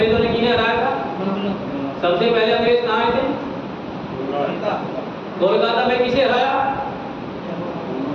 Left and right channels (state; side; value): identical; both; correlation 1.00